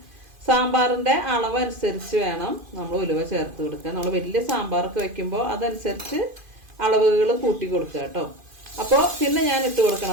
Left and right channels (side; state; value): left; late; 2.5 ms